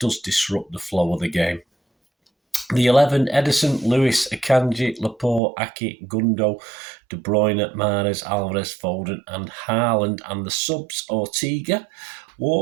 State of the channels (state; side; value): drops out; left; at 5.4 s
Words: disrupt the flow of the game. The 11, Edison, Lewis, Akanji, Laporte, Aki, Gundo, De Bruyne, Mahrez, Alvarez, Foden and Haaland. And the subs, Ortega,